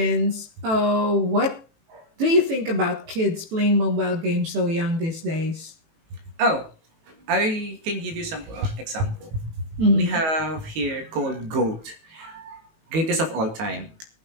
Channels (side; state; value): left; late; 19 ms